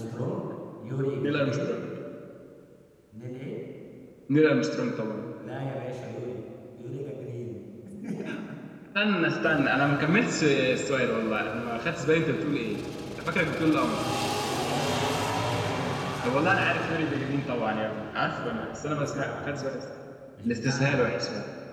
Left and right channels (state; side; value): identical; both; correlation 1.00